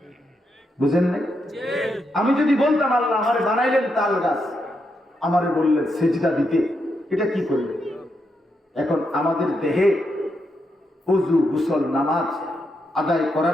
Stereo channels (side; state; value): both; normal; correlation 0.82